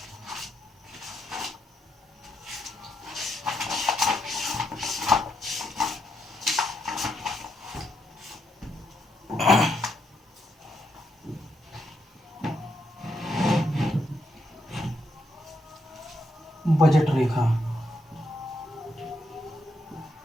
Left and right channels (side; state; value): both; normal; correlation 0.79